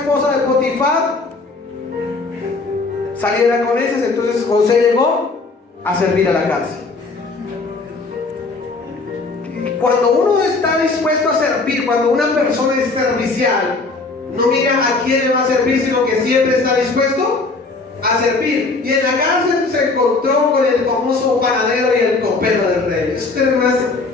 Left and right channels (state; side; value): quieter; right; 3.7 dB